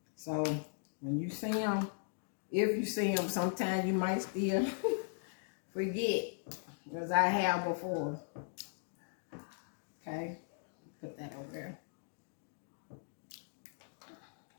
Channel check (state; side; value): silent; right; digital silence